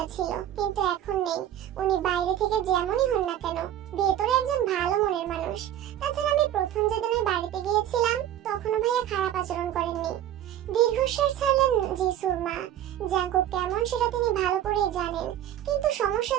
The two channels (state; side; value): quieter; left; 11.6 dB